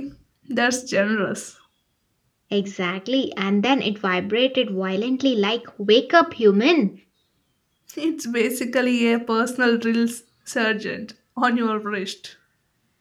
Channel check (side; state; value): both; identical; correlation 1.00